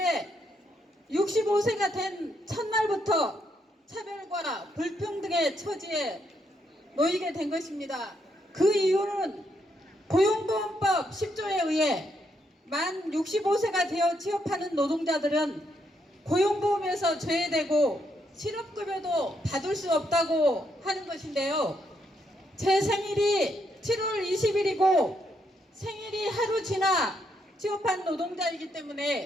65세가 된 첫날부터 차별과 불평등의 처지에 놓이게 된 것입니다. 그 이유는 고용보험법 10조에 의해 만 65세가 되어 취업하는 노동자들은 고용보험에서 제외되고 실업급여도 받을 수 없다고 하는 것인데요. 제 생일이 7월 20일이고 생일이 하루 지나 취업한 노동자이기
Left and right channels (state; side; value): normal; both; correlation 0.77